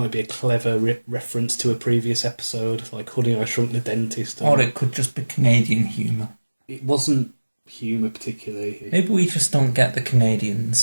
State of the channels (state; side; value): inverted; both; correlation -1.00